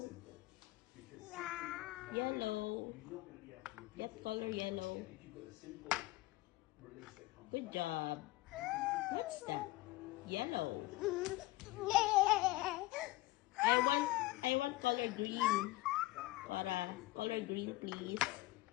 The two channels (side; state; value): right; quieter; 19.0 dB